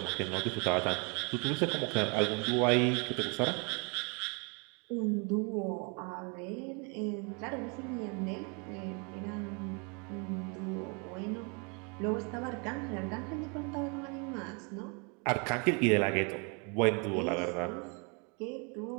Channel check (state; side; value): quieter; left; 34.0 dB